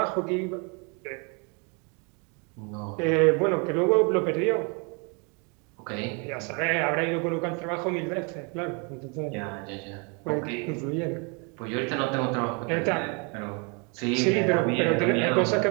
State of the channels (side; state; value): left; quieter; 33.6 dB